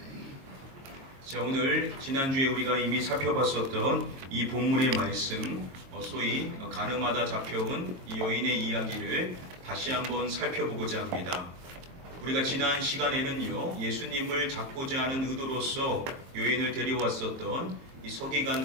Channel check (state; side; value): late; left; 23 ms